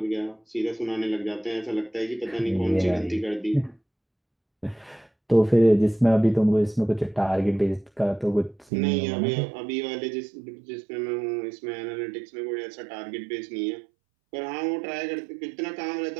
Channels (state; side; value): drops out; left; at 8.7 s